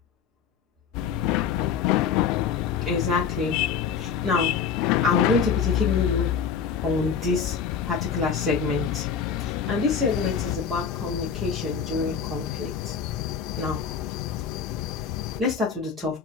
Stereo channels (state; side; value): quieter; right; 6.7 dB